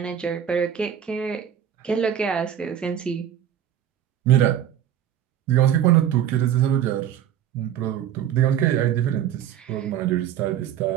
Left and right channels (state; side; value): quieter; left; 9.9 dB